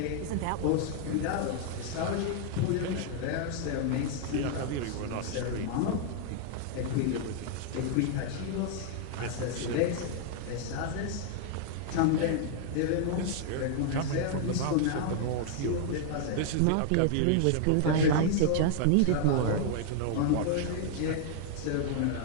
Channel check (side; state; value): both; different; correlation 0.00